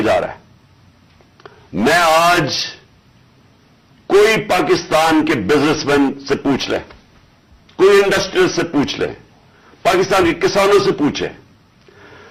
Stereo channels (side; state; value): both; identical; correlation 1.00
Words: جا رہا ہے. میں آج کوئی پاکستان کے بزنس مین سے پوچھ لیں, کوئی انڈسٹریل سے پوچھ لیں, پاکستان کے کسانوں سے پوچھیں,